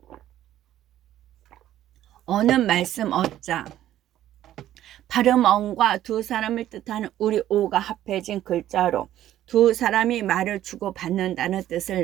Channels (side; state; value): left; quieter; 12.6 dB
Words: 어는 말씀 어자, 발음 언과 두 사람을 뜻하는 우리 오가 합해진 글자로 두 사람이 말을 주고받는다는 뜻을